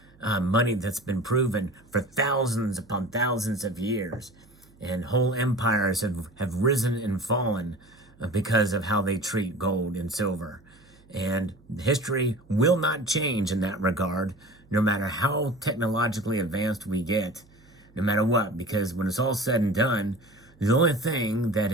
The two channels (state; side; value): noise; right; hum, 28 dB below the sound